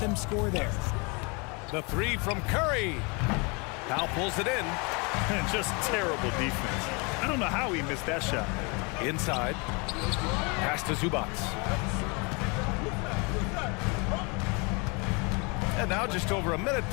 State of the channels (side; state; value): right; quieter; 30.3 dB